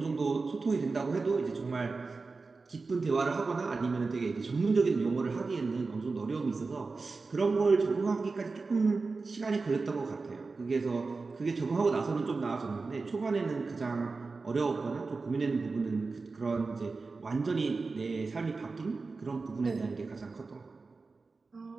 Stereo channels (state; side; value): quieter; left; 4.1 dB